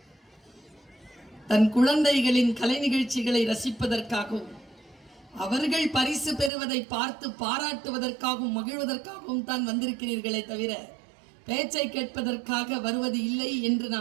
தன் குழந்தைகளின் கலை நிகழ்ச்சிகளை ரசிப்பதற்காகவும் அவர்கள் பரிசு பெறுவதை பார்த்து பாராட்டுவதற்காகவும் மகிழ்வதற்காகவும் தான் வந்திருக்கிறீர்களே தவிர பேச்சை கேட்பதற்காக வருவது இல்லை என்று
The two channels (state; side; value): drops out; left; at 6.5 s